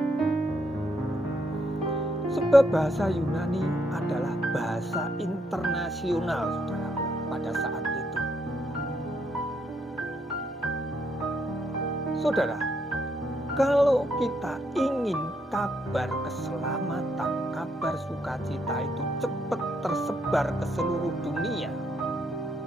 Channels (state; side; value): normal; both; correlation 0.75